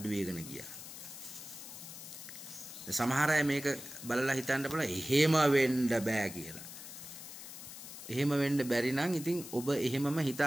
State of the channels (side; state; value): left; noise; hiss, 12 dB below the sound